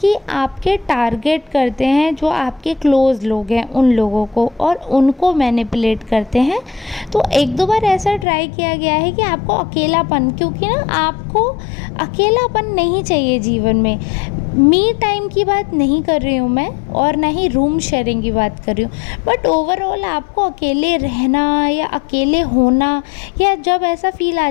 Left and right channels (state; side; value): drops out; right; at 8.2 s